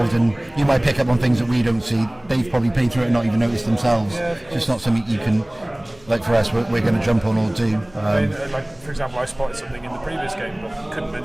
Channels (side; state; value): left; noise; hum, 28 dB below the sound